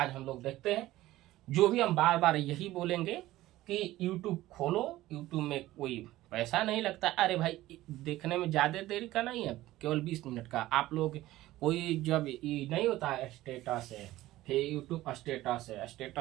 लोग देखते हैं, जो भी हम बार बार यही बोलेंगे कि YouTube खोलो, YouTube में कोई पैसा नहीं लगता। अरे भाई, देखने में ज्यादा देरी का नहीं है, केवल 20 मिनट का। आप लोग कोई जब ये नहीं होता है स्टेटस है, फिर यूट्यूब स्टेटस है,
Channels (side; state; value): left; quieter; 16.2 dB